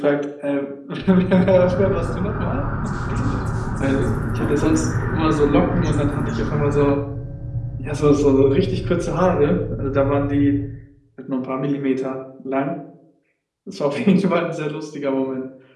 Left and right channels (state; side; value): identical; both; correlation 1.00